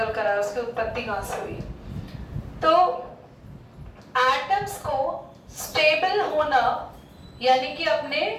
कर आया, उसकी उत्पत्ति कहाँ से हुई। तो एटम्स को स्टेबल होना यानी कि अपने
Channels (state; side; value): identical; both; correlation 1.00